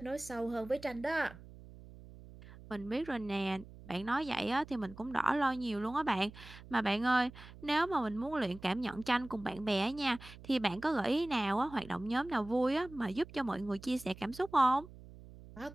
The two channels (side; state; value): right; noise; hum, 18 dB below the sound